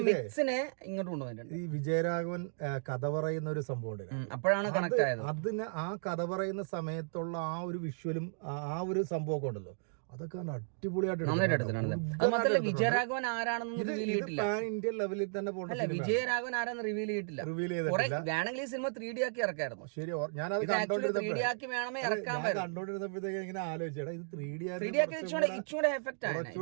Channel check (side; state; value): left; silent; digital silence